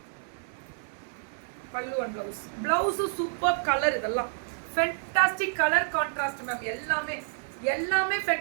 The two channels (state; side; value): silent; left; digital silence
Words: Pallu and blouse. பிளவுஸும் சூப்பர் கலர். இதெல்லாம் ஃபென்டாஸ்டிக் கலர் கான்ட்ராஸ்ட் மேம். எல்லாமே